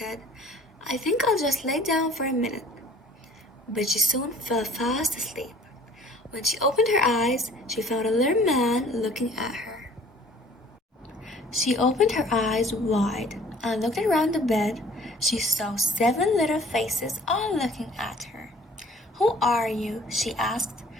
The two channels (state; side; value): normal; both; correlation 0.52